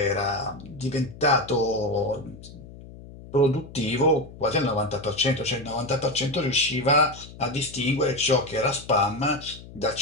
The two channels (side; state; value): left; noise; hum, 17 dB below the sound